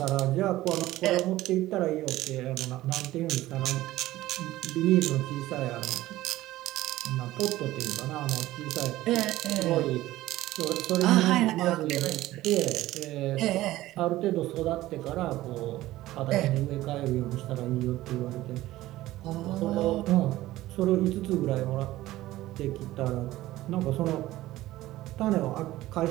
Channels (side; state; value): left; quieter; 16.1 dB